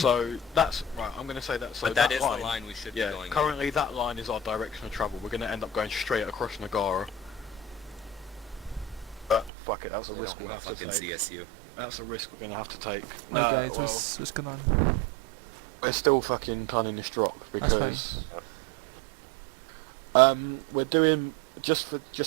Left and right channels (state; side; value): drops out; left; at 9.5 s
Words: So that's right. I'm going to say that. So But that is line, the line we should be yeah. going in. Currently, that line is our direction of travel. We're going to end up going straight across Nagara. But fuck it, that's a They risk don't we'll have have a to fucking take. CSU. That's a risk we're going to have to take. Right, guys, well, what's going on? we're still fucking planning this drop That's fine. because we're doing just